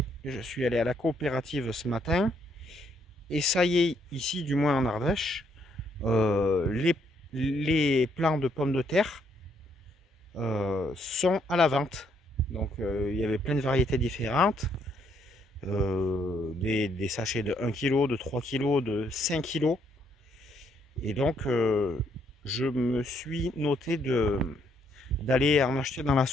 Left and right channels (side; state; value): both; normal; correlation 0.71